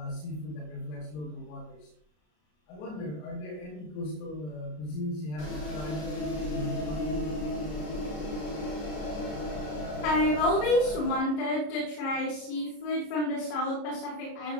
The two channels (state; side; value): late; right; 33 ms